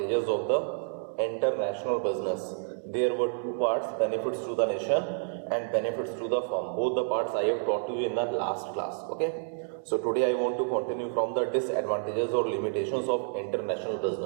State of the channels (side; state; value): left; silent; digital silence